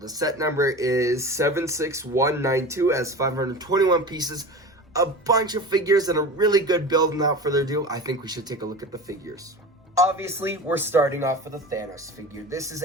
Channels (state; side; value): normal; both; correlation 0.33